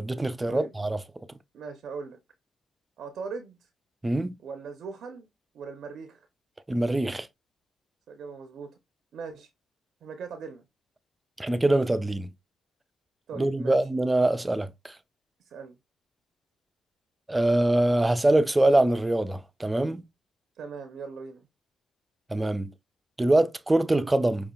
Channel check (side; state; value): both; normal; correlation 0.98